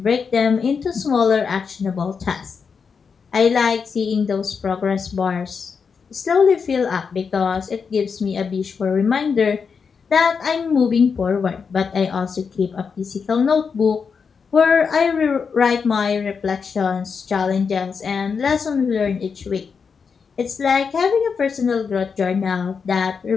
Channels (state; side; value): quieter; right; 5.8 dB